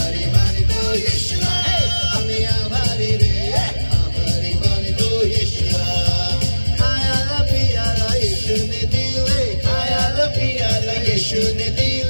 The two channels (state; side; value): inverted; both; correlation -1.00